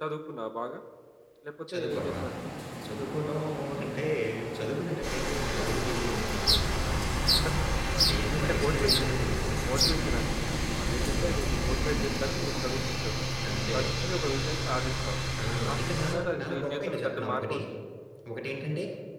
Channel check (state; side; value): identical; both; correlation 1.00